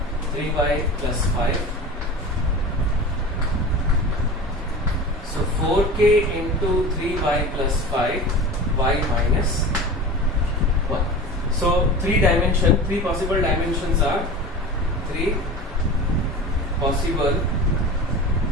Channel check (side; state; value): both; normal; correlation 0.33